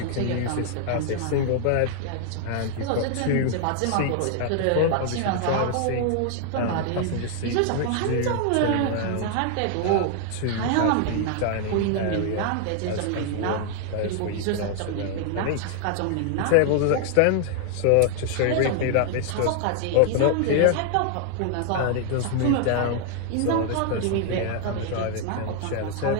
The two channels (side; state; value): both; different; correlation 0.00